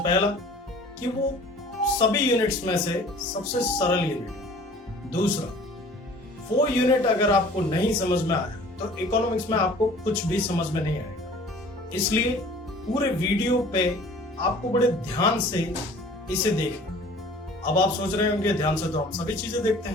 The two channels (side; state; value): both; normal; correlation 0.48